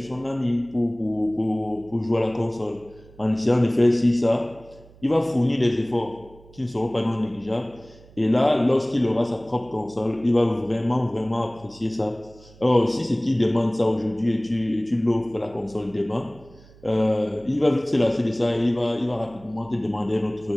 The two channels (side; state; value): right; noise; hum, 24 dB below the sound